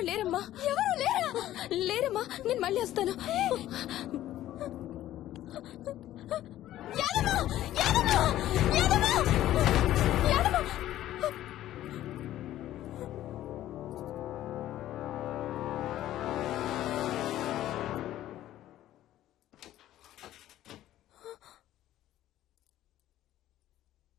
లేరమ్మా. ఎవరు లేరా? లేరమ్మా. నేను మళ్ళీ వస్తాను. యాదమ్మ! యాదమ్మ! యాదమ్మ! యాదమ్మ!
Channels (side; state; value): right; quieter; 13.5 dB